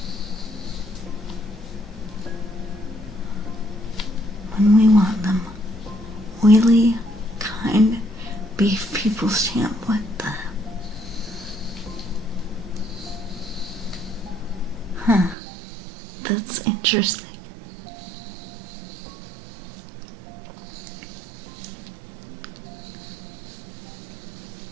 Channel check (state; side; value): drops out; left; at 15.4 s